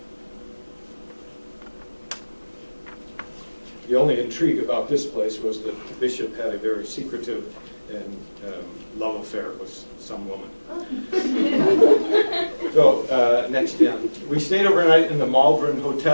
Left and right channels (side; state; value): both; inverted; correlation -1.00